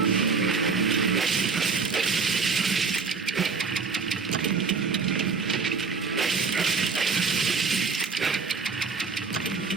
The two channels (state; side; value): quieter; left; 5.0 dB